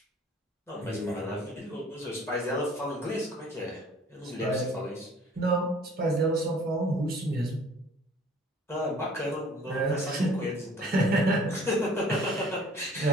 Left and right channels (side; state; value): both; normal; correlation 0.52